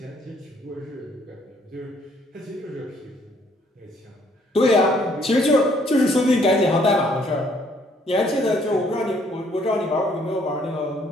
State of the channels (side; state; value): both; normal; correlation 0.65